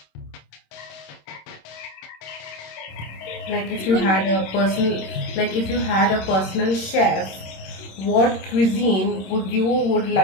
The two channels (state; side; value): late; right; 26 ms